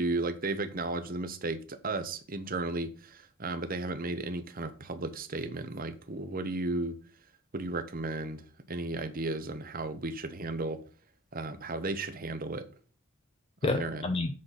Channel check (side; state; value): both; normal; correlation 0.34